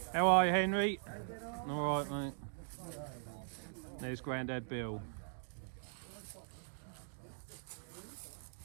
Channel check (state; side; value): silent; left; digital silence